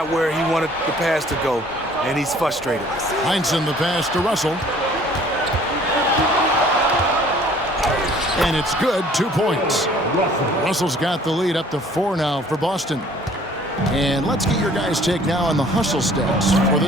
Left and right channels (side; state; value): both; normal; correlation 0.54